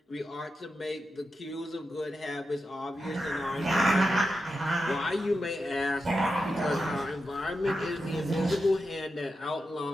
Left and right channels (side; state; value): both; normal; correlation 0.89